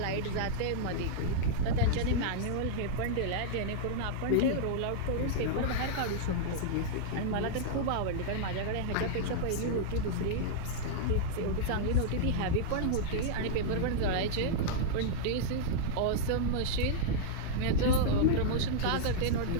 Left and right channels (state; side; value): different; both; correlation -0.02